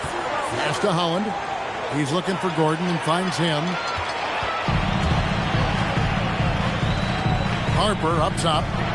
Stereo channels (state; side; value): identical; both; correlation 1.00